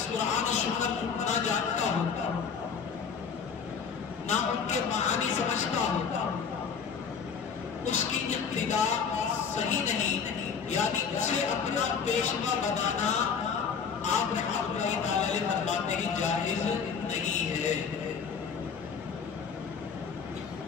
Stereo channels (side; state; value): right; quieter; 6.2 dB